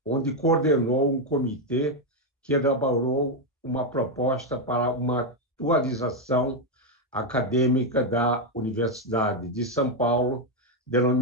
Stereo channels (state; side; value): normal; both; correlation 0.04